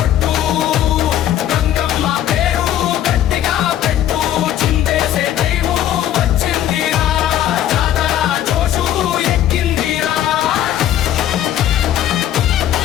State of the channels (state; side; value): quieter; right; 11.5 dB